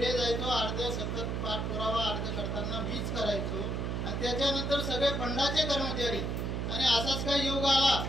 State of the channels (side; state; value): right; noise; hum, 1 dB below the sound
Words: जायचो. अर्ध सतत पाठपुरावा अर्ज करताना मीच करायचो. आणि त्याच्यानंतर सगळे फंडाचे कर्मचारी आणि असाच काही योग आला.